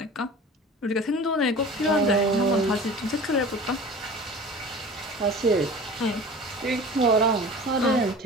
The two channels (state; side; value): normal; both; correlation 0.39